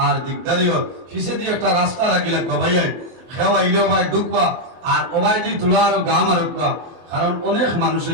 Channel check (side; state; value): left; late; 24 ms